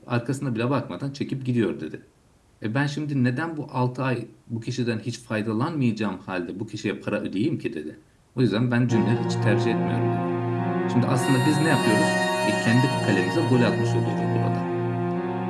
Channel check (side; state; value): both; identical; correlation 1.00